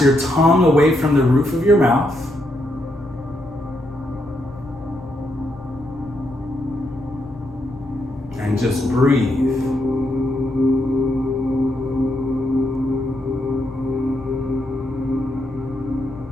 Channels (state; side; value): noise; left; rumble, 21 dB below the sound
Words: your tongue away from the roof of your mouth. And just breathe.